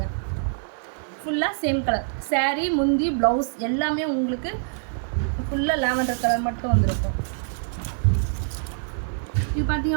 ஃபுல்லாக சேம் கலர் சாரீ முந்தி ப்ளவுஸ் எல்லாமே உங்களுக்கு ஃபுல்லாக லாவெண்டர் கலர் மட்டும் வந்துருக்கும். இது பார்த்தீங்க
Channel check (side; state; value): left; silent; 62 dB below the other